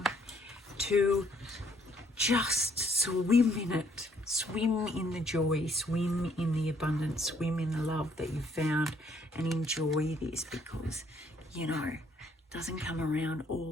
to just swim in it. Swim in the joy, swim in the abundance, swim in the love that you've found, and enjoy this, because, you know, it doesn't come around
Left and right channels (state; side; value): normal; both; correlation 0.66